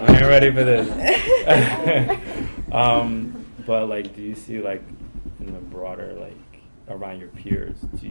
ain't ready for this. But like, do you see like in the broader, like around your peers, do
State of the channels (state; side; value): inverted; both; correlation -1.00